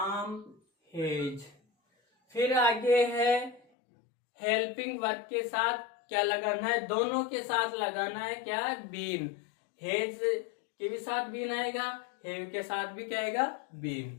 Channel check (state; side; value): drops out; right; at 3.6 s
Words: हेज। फिर आगे है हेल्पिंग वर्ब के साथ क्या लगाना है? दोनों के साथ लगाना है क्या? बीन। हेज के भी साथ बीन आएगा, हेव के साथ भी क्या आएगा?